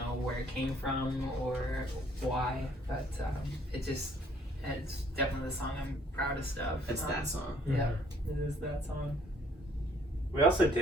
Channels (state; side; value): normal; both; correlation 0.62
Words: where it came from or why, but it's definitely the song I'm proudest of. It's that song. Yeah, it is that song. We also